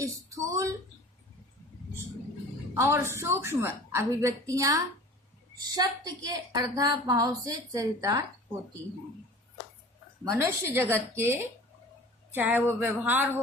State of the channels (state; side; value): normal; both; correlation 0.43